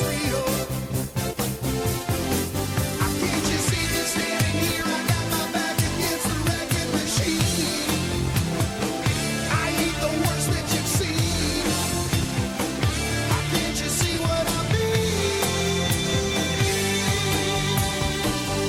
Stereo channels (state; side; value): identical; both; correlation 1.00